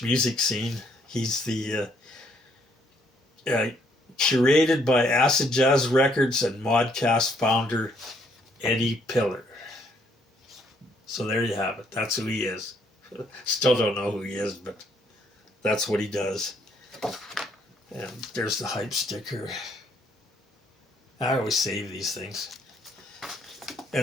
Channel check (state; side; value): normal; both; correlation 0.68